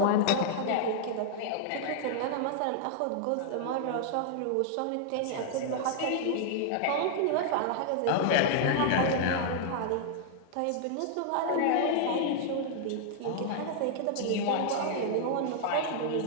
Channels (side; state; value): both; different; correlation -0.01